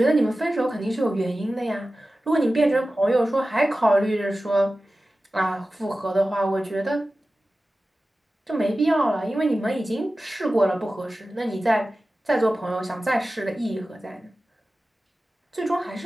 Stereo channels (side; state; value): both; normal; correlation 0.95